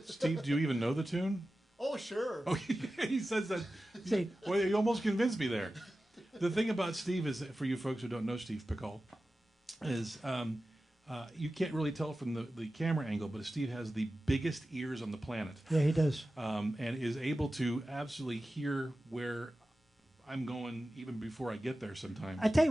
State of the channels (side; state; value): both; normal; correlation 0.94